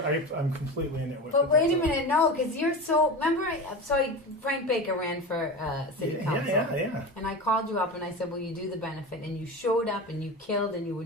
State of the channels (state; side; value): normal; both; correlation 0.27